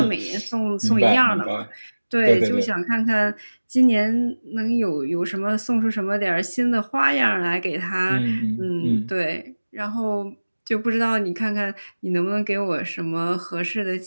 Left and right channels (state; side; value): inverted; both; correlation -1.00